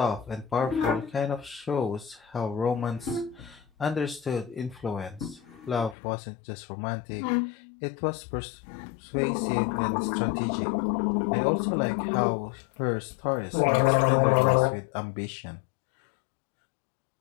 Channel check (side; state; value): right; drops out; at 6.0 s